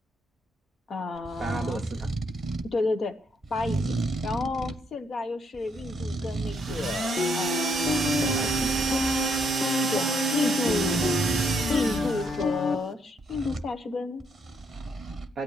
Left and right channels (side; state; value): both; normal; correlation 0.73